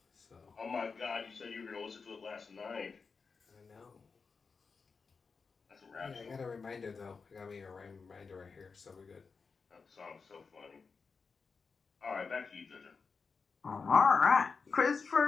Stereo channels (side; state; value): right; quieter; 5.0 dB